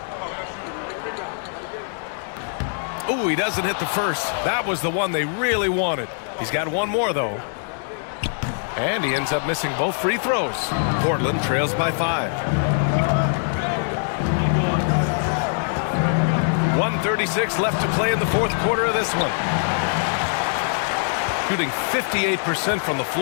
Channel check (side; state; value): right; silent; digital silence